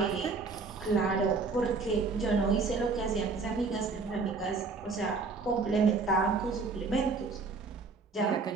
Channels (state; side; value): quieter; left; 4.3 dB